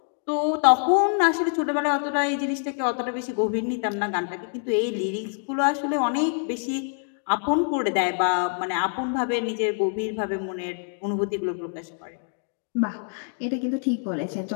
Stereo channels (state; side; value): silent; right; 61 dB below the other